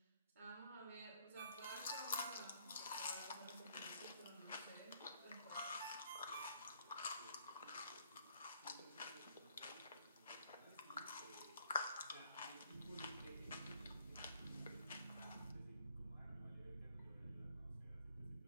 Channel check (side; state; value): both; inverted; correlation -0.64